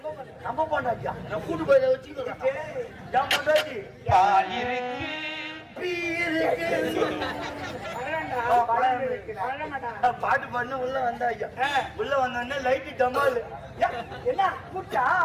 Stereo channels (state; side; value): identical; both; correlation 1.00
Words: நம்ம பொண்டாட்டியா நான் கூட்டு போய் வச்சுக்கிறேன் என் மண்டாட்டி பால் இருக்கு பாட்டு பண்ண உள்ள வந்தா ஐயா உள்ள வந்தோடனே லைட்டு டமால் என்ன கூட்டா